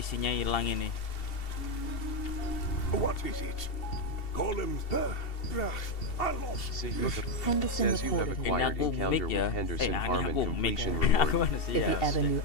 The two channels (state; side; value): late; right; 2.7 ms